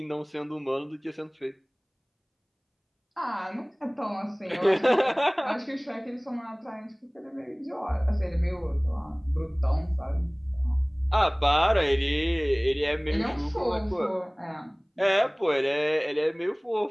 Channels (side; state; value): both; identical; correlation 1.00